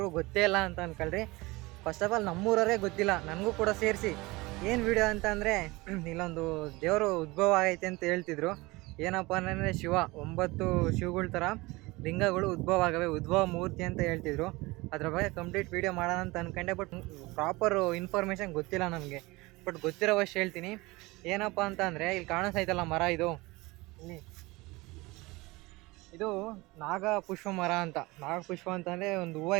ಗೊತ್ತೇ ಇಲ್ಲ ಅಂತ ಅನ್ಕೊಳ್ರಿ. ಫಸ್ಟ್ ಆಫ್ ಆಲ್ ನಮ್ಮೂರವರೇ ಗೊತ್ತಿಲ್ಲ, ನನಗೂ ಕೂಡ ಸೇರಿಸಿ. ಏನು ವಿಡಿಯೋ ಅಂತಂದರೆ ಇಲ್ಲೊಂದು ದೇವರು ಉದ್ಭವ ಆಗೈತೆ ಅಂತ ಹೇಳ್ತಿದ್ರು. ಏನಪ್ಪ ಅಂತಂದರೆ 9 ಶಿವಗಳ ಥರ ಲಿಂಗಗಳು ಉದ್ಭವ ಆಗವೆ, ಉದ್ಭವ ಮೂರ್ತಿ ಅಂತ ಹೇಳ್ತಿದ್ರು. ಅದ್ರ ಬಗ್ಗೆ ಕಂಪ್ಲೀಟ್ ವಿಡಿಯೋ ಮಾಡೋಣ ಅಂತ ಅಂದ್ಕೊಂಡೆ, ಬಟ್ ಪ್ರಾಪರ್ ಇನ್ಫಾರ್ಮೇಷನ್ ಗೊತ್ತಿಲ್ಲ ನನಗೆ. ಬಟ್ ಗೊತ್ತಿರೋವಷ್ಟು ಹೇಳ್ತೀನಿ. ಏನಪ್ಪ ಅಂತ ಅಂದರೆ ಇಲ್ಲಿ ಕಾಣಿಸ್ತೈತಲ್ಲ ಮರ, ಇದು ನಾಗಪುಷ್ಪ ಮರ ಅಂತ. ನಾಗಪುಷ್ಪ ಅಂತಂದರೆ ಒಂದು ಹೂವು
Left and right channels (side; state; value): left; quieter; 22.4 dB